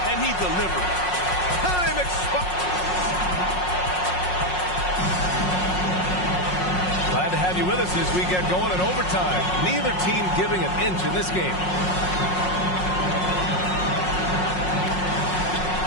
he delivered. Time expired. Glad to have you with us as we get going in overtime. Neither team giving an inch in this game.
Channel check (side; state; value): right; late; 5.5 ms